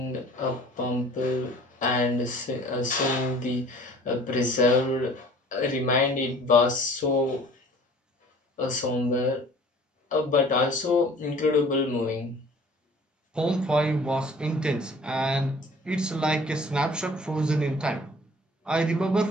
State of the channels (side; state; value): both; normal; correlation 0.49